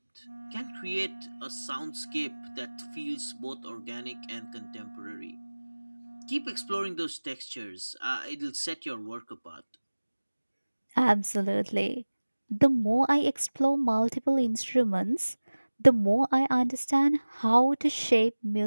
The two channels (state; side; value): inverted; both; correlation -1.00